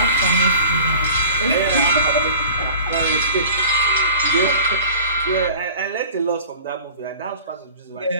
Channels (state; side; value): inverted; both; correlation -0.41